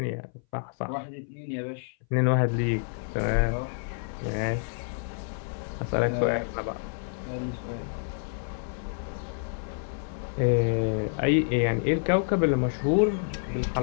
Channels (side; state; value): right; silent; 59 dB below the other